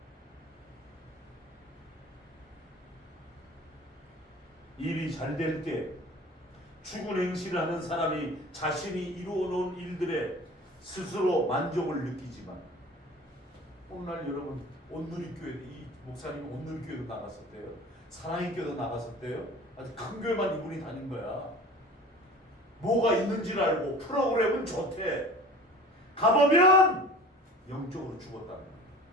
일이 잘 될 때 죽은 행실을 하는 사람이 자신이 이루어놓은 일들에 스스로 만족을 느끼지만 오늘날 여러분 온누리교회, 이 목사님이 온누리교회도 나갔었대요. 사랑의 교회도 나갔었대요. 아주 큰 교회만 이분이 다닌 거야. 뭐가 있는지를 알고 프로그램은 좋대. 가보면 영적으로 죽었다는 거야.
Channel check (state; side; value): normal; both; correlation 0.41